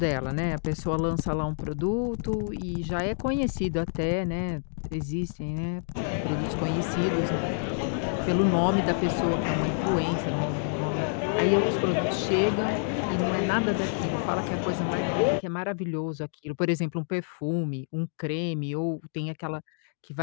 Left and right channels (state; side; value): silent; right; digital silence